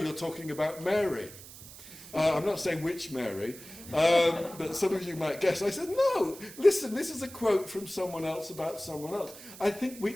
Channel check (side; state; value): right; noise; hiss, 16 dB below the sound